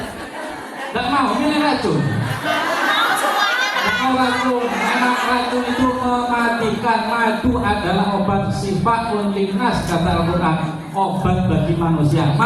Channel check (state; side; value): identical; both; correlation 1.00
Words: mau milih racun. Mau racun, karena racun itu mematikan. Madu adalah obat sifat linnas kata Al-Quran, obat bagi manusia.